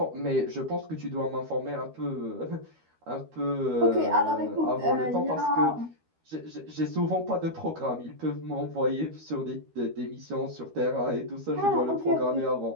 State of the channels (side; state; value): left; late; 13 ms